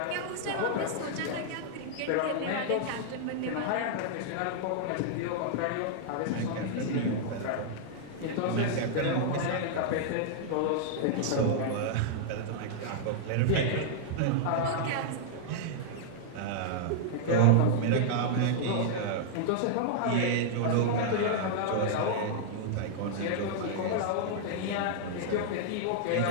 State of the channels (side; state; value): both; different; correlation -0.01